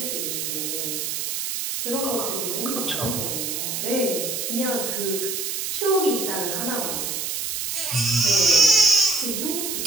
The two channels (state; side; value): noise; right; hiss, 3 dB below the sound